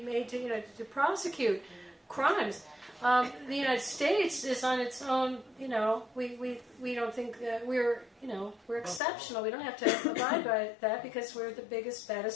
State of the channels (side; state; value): right; drops out; at 9.0 s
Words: to prosecute crimes. The United States is on its own. We don't think that we're exceptional. We don't have to abide by that because we're the biggest,